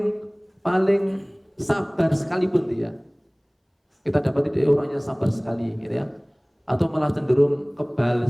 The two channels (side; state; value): both; identical; correlation 1.00